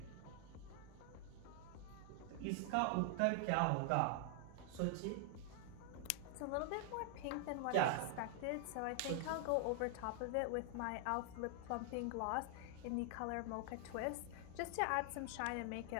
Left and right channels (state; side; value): different; both; correlation 0.00